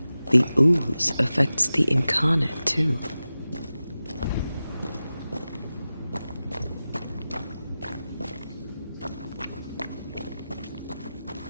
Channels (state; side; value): inverted; both; correlation -0.95